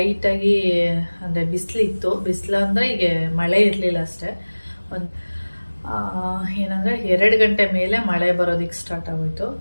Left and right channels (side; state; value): both; inverted; correlation -1.00